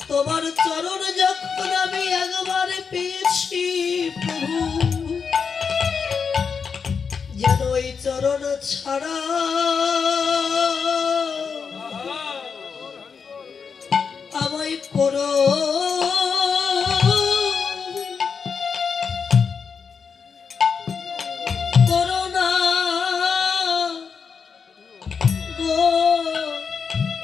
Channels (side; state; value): right; quieter; 5.9 dB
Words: তোমার চরণ যখন আমি একবার পেয়েছি প্রভু, যেন ওই চরণ ছাড়া আমায় করো করোনা গো।